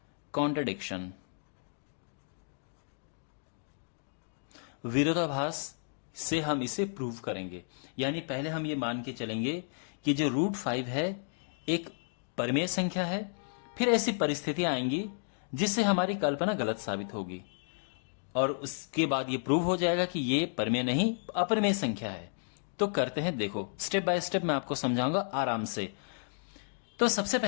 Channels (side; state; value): right; silent; digital silence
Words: कॉन्ट्रडिक्शन, विरोधाभास से हम इसे प्रूव करेंगे। यानी पहले हम ये मान के चलेंगे कि जो √5 है एक परिमेय संख्या है। फिर ऐसी परिस्थितियां आएंगी जिससे हमारी कल्पना गलत साबित होगी और उसके बाद ये प्रूव हो जाएगा कि ये परिमेय नहीं अपरिमेय संख्या है। तो करते हैं, देखो स्टेप बाय स्टेप मैं आपको समझाऊंगा आराम से। तो सबसे